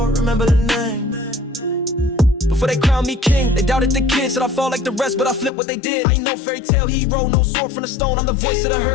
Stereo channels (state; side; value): drops out; right; at 5.5 s